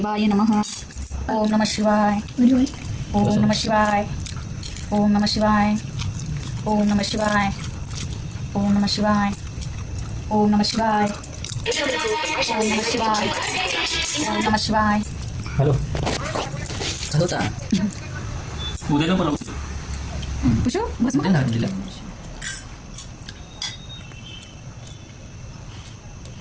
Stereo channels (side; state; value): both; identical; correlation 1.00